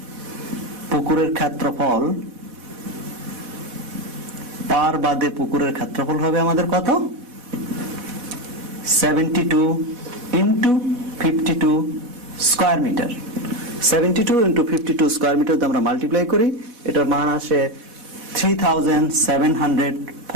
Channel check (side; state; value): left; late; 4.1 ms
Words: পুকুরের ক্ষেত্রফল, পাড় বাদে পুকুরের ক্ষেত্রফল হবে আমাদের কত? 72 × 52 স্কয়ার মিটার। 72 × 52 স্কয়ার মিটার আমরা মাল্টিপ্লাই করি, এটার মান আসে